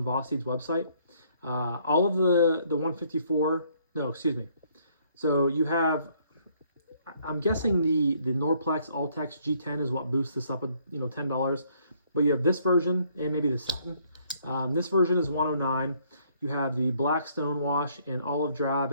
Vosteed's website. All of the 154, no, excuse me. So you have, I'm guessing the Norplex All-Tex G10 is what boosts this up at, you know, $10. But you have this version and maybe the satin. This version is $109. You have the black stonewash and olive drab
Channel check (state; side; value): inverted; both; correlation -0.66